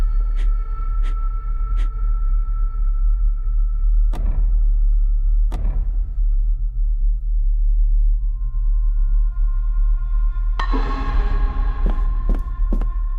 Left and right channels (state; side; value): identical; both; correlation 1.00